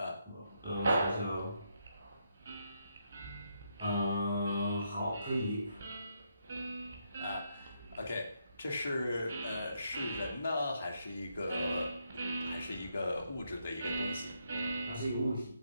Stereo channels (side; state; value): both; inverted; correlation -0.78